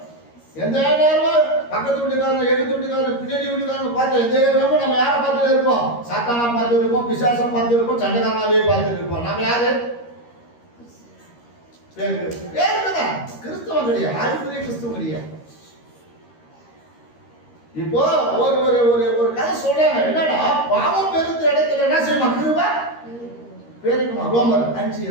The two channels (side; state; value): right; late; 13 ms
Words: எந்த நேரமும் பக்கத்து வீட்டுக்காரன், எதிர்த்து வீட்டுக்காரன், பின்னாடி வீட்டுக்காரன் பார்த்து எந்த நேரமும் நம்ம யாரை பார்த்துட்டு இருப்போம்? சாத்தானா பார்த்து இருப்போம், பிசாசம் பார்த்து இருப்போம், சண்டைக்காரனாவே பார்த்துட்டு இருப்போம். நம்ம யாரு? வேறுதான் கிறிஸ்தவம் கிடையாது, ஆதிபுரிய கிறிஸ்தவம் கிடையாது. இப்போ ஒரு ஒரு ஒரு ஒரு கதை சொல்றாங்க. என்னடா, பாவம் பெருத்த இடத்துல என்ன செய்யுமா? கிருபை பெருக்குமா? ரோமர்